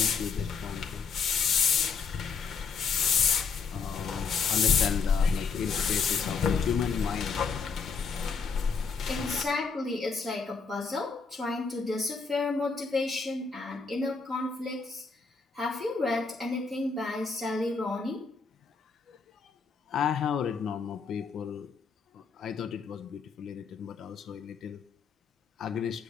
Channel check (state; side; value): quieter; right; 5.2 dB